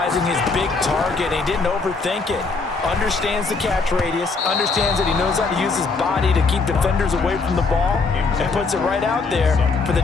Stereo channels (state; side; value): quieter; right; 4.2 dB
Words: his big target. He didn't overthink it. Understands the catch radius. Understands that he knows how to use his body to keep defenders away from the ball. And puts it right out there for the